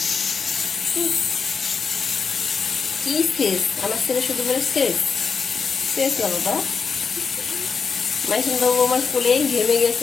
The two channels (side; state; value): right; quieter; 5.5 dB